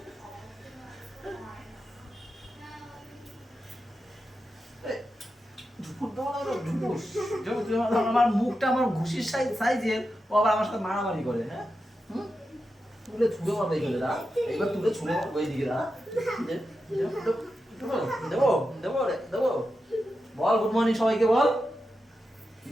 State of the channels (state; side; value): normal; both; correlation 0.89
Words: আমার মুখটা আমার ঘুষির সাইজের, ও আবার আমার সাথে মারামারি করে। হ্যাঁ, তুলে ছুড়ে মারবে এইগুলো, দা এইবার তুলে ছুড়ে মারবো এইদিকে। দা দেবো দেবো দেবো। বল গুড মর্নিং সবাইকে, বল